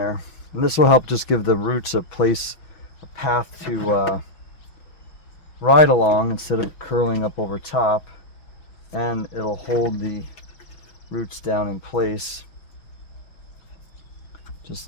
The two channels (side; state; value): right; late; 6.1 ms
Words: And this will help just give the roots a place, a path to ride along instead of curling up over top, and it'll hold the roots down in place just